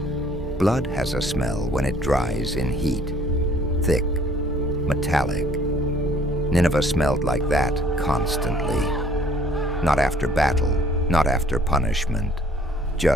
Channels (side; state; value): both; normal; correlation 0.58